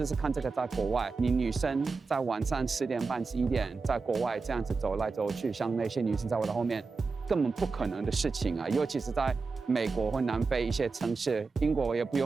试看这个在国外，你女生在晚上10点半、11点在国外这样子走来走去，像那些女生在我的后面，根本不可能的事情啊！尤其是在美国或南非一些城市，英国也不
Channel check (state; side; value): quieter; left; 4.4 dB